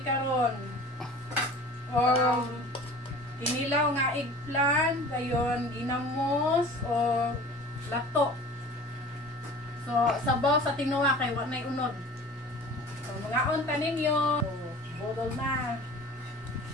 karon. Kinilaw nga eggplant, dayon ginamos o lato. So sabaw sa tinuwa kay wa nay unod. So mga unta ninyo, bodol na.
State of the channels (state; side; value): normal; both; correlation 0.42